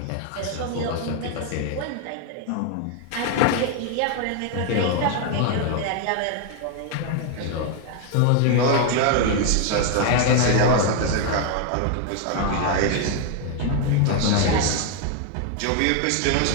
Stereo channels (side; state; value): both; different; correlation 0.01